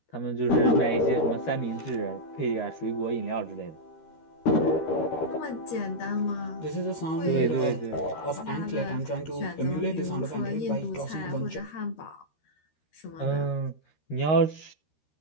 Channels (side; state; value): right; late; 13 ms